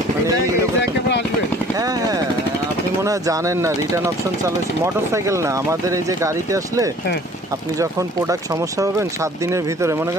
মানে আসবেন? হ্যাঁ হ্যাঁ, আপনি মনে হয় জানেন না, রিটার্ন অপশন চালু হয়েছে। মোটরসাইকেল না, আমাদের এই যে গাড়িতে আসলে আপনি যখন প্রোডাক্ট সমস্যা পাবেন 7 দিনের ভিতরে, মনে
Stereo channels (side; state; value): both; normal; correlation 0.51